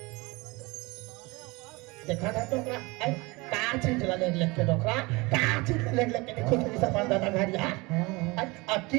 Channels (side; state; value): left; quieter; 24.4 dB